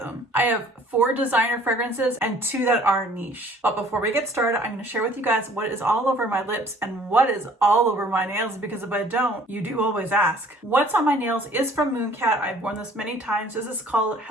I have 4 designer fragrances and 2 that are niche. But before we get started, I'm going to share with you guys what is all over my lips and what is all over my nails, because if I don't, you do always ask. What's on my nails is from Mooncat. I've worn this many times. This is called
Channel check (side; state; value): both; normal; correlation 0.54